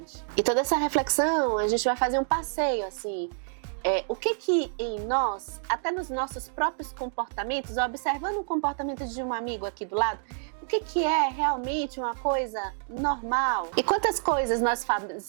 E toda essa reflexão, a gente vai fazer um passeio assim, o que em nós, até nos nossos próprios comportamentos, observando o comportamento de um amigo aqui do lado, o que é realmente uma coisa normal? E quantas coisas nós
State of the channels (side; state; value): left; silent; digital silence